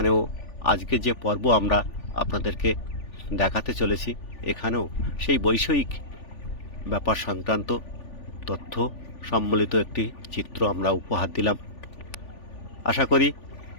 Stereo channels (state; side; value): late; right; 3.4 ms